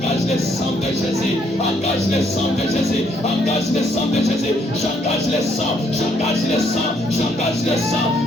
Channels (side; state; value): both; normal; correlation 0.70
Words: le sang de Jésus. Engage le sang de Jésus. Engage le sang de Jésus. J'engage le sang. J'engage le sang. J'engage le sang.